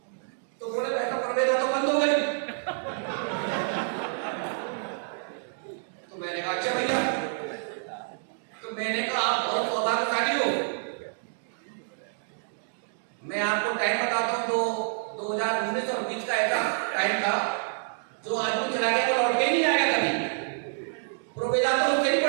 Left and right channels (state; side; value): silent; left; digital silence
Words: तो बोले बैठा प्रवेदा तो बंद हो गई। तो मैंने कहा अच्छा भैया, तो मैंने कहा आप बहुत सौभाग्यशाली हो, मैं आपको टाइम बताता हूँ, तो 2019 और 20 का ऐसा टाइम था, जो आदमी चला गया वो लौट के ही नहीं आएगा कभी। प्रोवेदा तो उससे भी